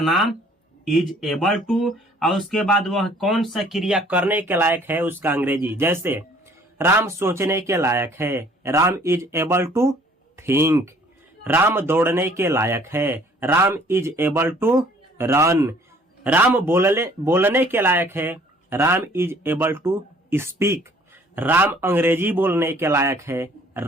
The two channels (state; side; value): normal; both; correlation 0.57